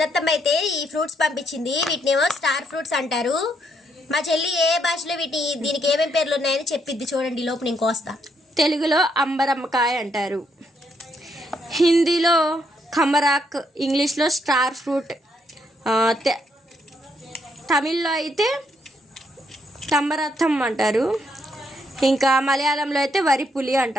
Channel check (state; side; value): normal; both; correlation 0.75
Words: అయితే ఈ ఫ్రూట్స్ పంపించింది. వీటినేమో స్టార్ ఫ్రూట్స్ అంటారు. మా చెల్లి ఏ భాషలో దీనికి ఏమేమి పేర్లు ఉన్నాయని చెప్పిద్ది. చూడండి లోపు నేను కోస్తా. తెలుగులో అంబరమ్మకాయ అంటారు, హిందీలో ఖమరాక్, ఇంగ్లీష్లో స్టార్ ఫ్రూట్, తమిళ్లో అయితే తమ్మరథం అంటారు, ఇంకా మలయాళంలో అయితే వరి పులి